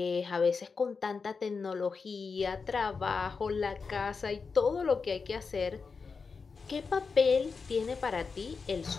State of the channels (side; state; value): right; quieter; 5.0 dB